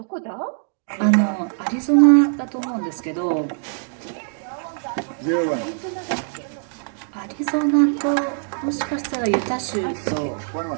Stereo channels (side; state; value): left; silent; digital silence